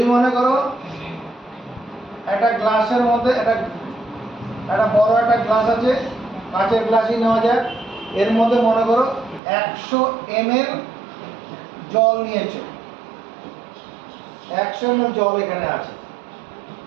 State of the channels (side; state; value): left; drops out; at 9.4 s